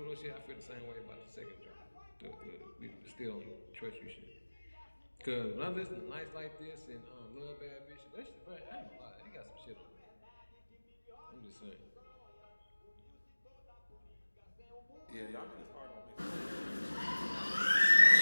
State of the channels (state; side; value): inverted; both; correlation -1.00